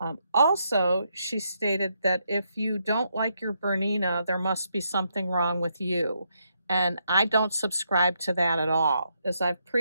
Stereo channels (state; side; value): inverted; both; correlation -0.78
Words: Also, she stated that if you don't like your Bernina, there must be something wrong with you. And I don't subscribe to that at all. As I've